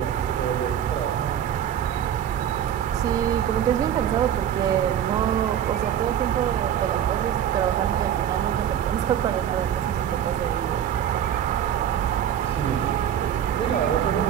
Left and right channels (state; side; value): quieter; left; 9.9 dB